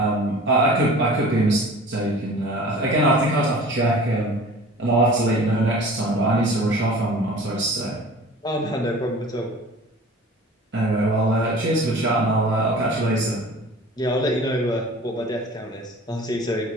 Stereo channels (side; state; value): both; normal; correlation 0.43